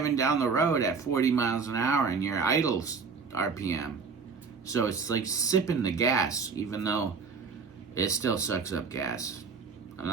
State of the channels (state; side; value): quieter; left; 5.3 dB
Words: down the road at 40 miles an hour and you're idle RPM. So it's like sipping the gas, even though it still sucks up gas. I'm